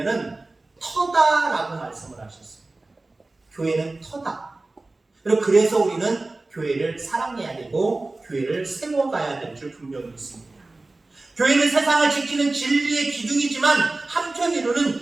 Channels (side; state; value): left; quieter; 3.1 dB